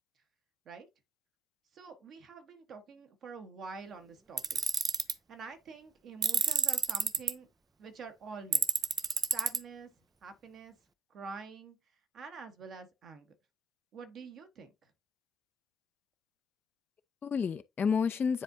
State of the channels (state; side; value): normal; both; correlation 0.61